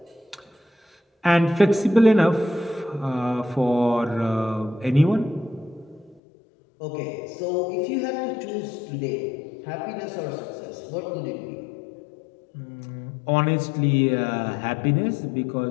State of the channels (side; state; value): right; drops out; at 6.2 s